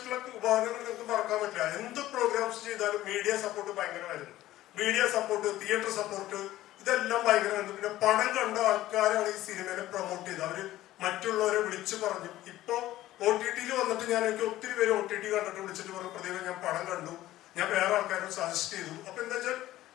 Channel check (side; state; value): right; quieter; 15.1 dB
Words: ഉപകരണങ്ങൾ നിങ്ങൾക്ക് മറക്കാൻ പറ്റില്ല. എന്ത് പ്രോഗ്രാംസ് ചെയ്താലും മീഡിയ സപ്പോർട്ട് ഭയങ്കരമായിരുന്നു. മീഡിയ സപ്പോർട്ട്, തിയേറ്റർ സപ്പോർട്ട്, ഇതെല്ലാം ഭയങ്കരമായിരുന്നു. പിന്നെ പണം കണ്ട ആൾക്കാരാണ് ഈ സിനിമയെ പ്രൊമോട്ട് ചെയ്തത്. അവര് മറ്റുള്ളവരെ വിളിച്ചു പറഞ്ഞു. ഇപ്പൊ OTT വന്നിട്ട് എനിക്ക് ഒത്തിരി പേര് OTT കണ്ടിട്ട് വിളിച്ചിട്ട് പറഞ്ഞു, പ്രതിഭ ഞാൻ പടം കണ്ടു, ഞാൻ വേറെ ആൾക്കാരോട് സജസ്റ്റ് ചെയ്തു. അപ്പൊ എന്താ വെച്ചാൽ